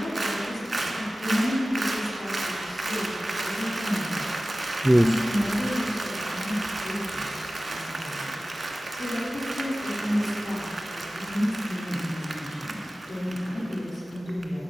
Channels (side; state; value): both; normal; correlation 0.96